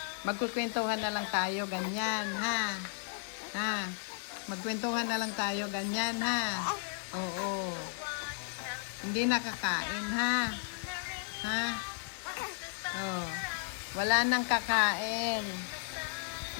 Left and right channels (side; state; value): right; silent; digital silence